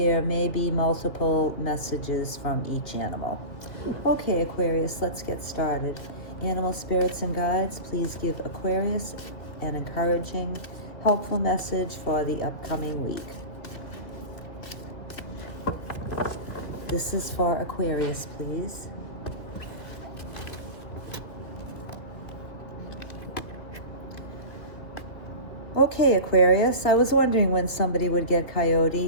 may be multiple messages from each animal. Okay Aquarius, let's get started. Animal spirits and guides, please give Aquarius an encouraging, helpful message for the upcoming week. This is for Aquarius, please. Okay, Aquarius, I was wondering when somebody would get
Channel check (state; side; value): late; right; 2.5 ms